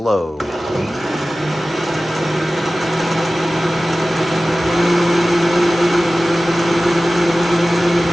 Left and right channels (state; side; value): normal; both; correlation 0.96